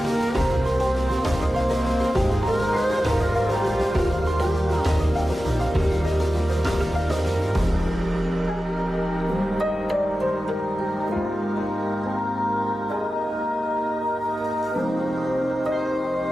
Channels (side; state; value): both; normal; correlation 0.93